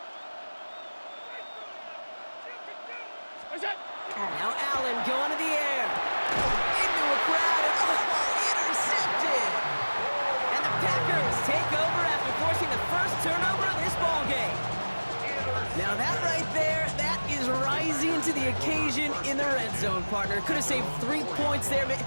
Now Allen going to the air. Into a crowd and intercepted. And the Packers take over after forcing the first turnover of this ballgame. Now that right there, that is rising to the occasion in the red zone, partner. Could have saved 3 points there,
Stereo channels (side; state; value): both; inverted; correlation -1.00